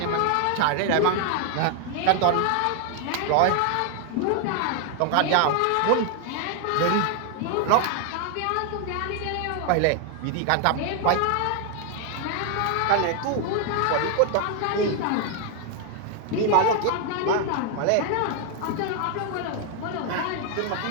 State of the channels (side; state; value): both; different; correlation 0.00